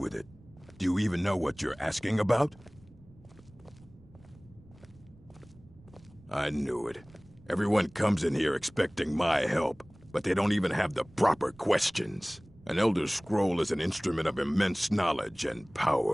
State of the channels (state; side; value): noise; right; rumble, 25 dB below the sound